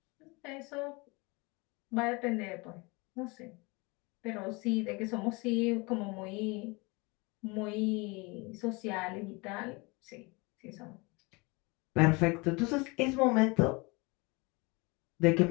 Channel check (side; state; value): right; quieter; 26.9 dB